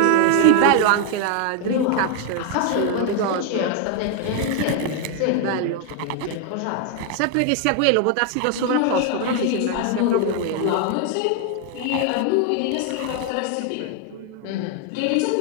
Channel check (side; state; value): both; different; correlation 0.01